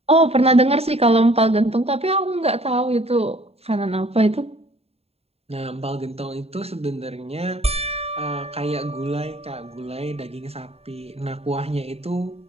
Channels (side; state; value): left; late; 0.29 ms